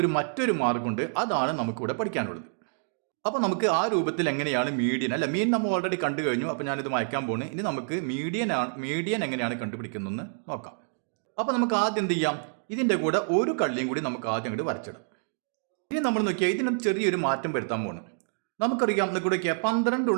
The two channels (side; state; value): left; silent; digital silence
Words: മറ്റൊരു മാർഗമുണ്ട്. അതാണ് നമുക്കിവിടെ പഠിക്കാനുള്ളത്. അപ്പോൾ നമുക്ക് ആ രൂപത്തിൽ എങ്ങനെയാണ് മീഡിയൻ അല്ല മീൻ നമ്മൾ ഓൾറെഡി കണ്ടു കഴിഞ്ഞു. അപ്പോൾ ഞാനിത് മായ്ക്കാൻ പോകുന്നു. ഇനി നമുക്ക് മീഡിയൻ എങ്ങനെയാണ് കണ്ടുപിടിക്കുന്നതെന്ന് നോക്കാം. അപ്പോൾ നമുക്ക് ആദ്യം എന്ത് ചെയ്യാം? ഇതിൻ്റെ കൂടെ ഒരു കള്ളിയും കൂടി നമുക്ക് ആദ്യം അങ്ങോട്ട് വരച്ചിടാം. ഇനി നമ്മൾ നോക്കിയാൽ ഇതിന് ചെറിയൊരു മാറ്റം വരുത്താൻ പോകുന്നു. നമുക്കറിയാം ഇവിടെ 12